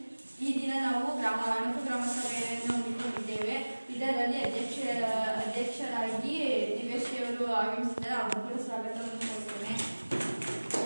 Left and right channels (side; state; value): both; inverted; correlation -1.00